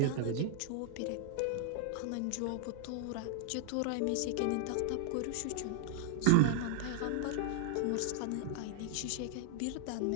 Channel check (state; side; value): different; both; correlation 0.00